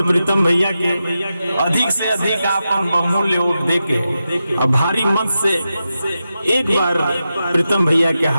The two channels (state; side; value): inverted; both; correlation -0.90